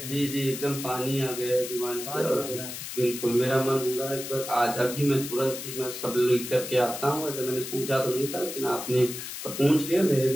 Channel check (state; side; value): noise; left; hiss, 8 dB below the sound